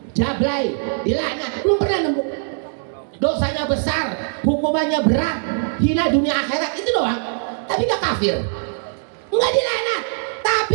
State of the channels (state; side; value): silent; left; 65 dB below the other